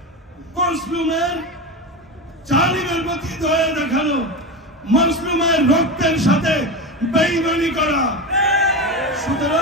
মজলুমের জালিমের প্রতি দয়া দেখানো, মজলুমের রক্তের সাথে বেঈমানি করা।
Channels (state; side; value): normal; both; correlation 0.21